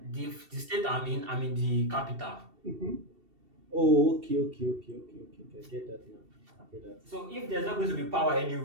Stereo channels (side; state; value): left; late; 2.7 ms